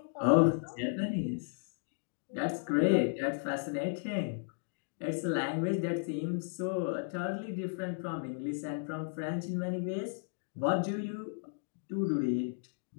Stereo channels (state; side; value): silent; right; digital silence